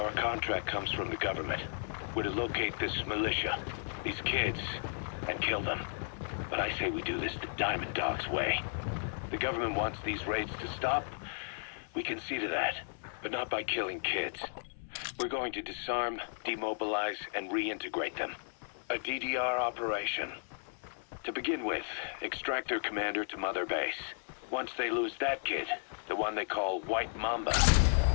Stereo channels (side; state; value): right; silent; 55 dB below the other